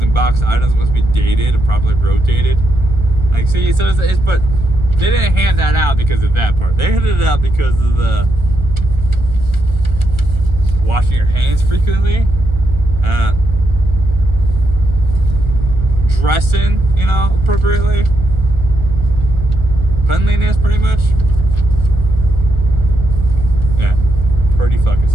and boxed items must be dated and properly rotated. Like, see, so it's but they didn't hand that out because of that part. They handed it out because of the washing your hands frequently, dressing, you know, appropriately, cleanliness, pretty much. Yeah, pretty fucking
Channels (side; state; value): left; late; 1.4 ms